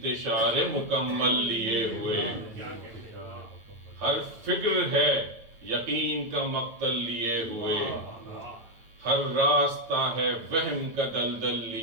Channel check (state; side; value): late; left; 9.0 ms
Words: مکمل لیے ہوئے, ہر فکر ہے یقین کا مقتل لیے ہوئے, ہر راستہ ہے وہم کا دلدل